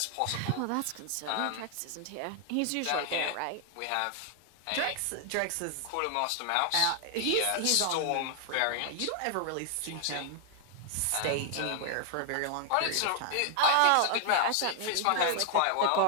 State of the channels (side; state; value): both; different; correlation 0.00